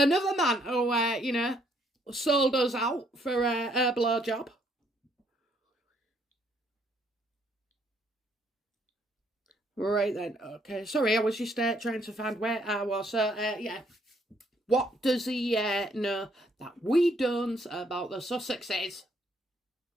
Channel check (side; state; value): both; normal; correlation 0.69